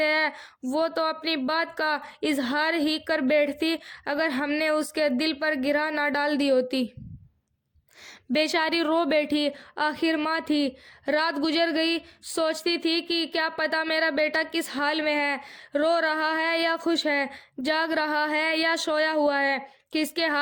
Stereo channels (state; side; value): identical; both; correlation 1.00